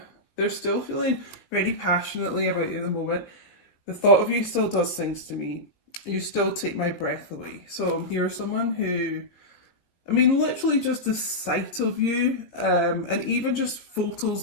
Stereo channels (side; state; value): right; late; 18 ms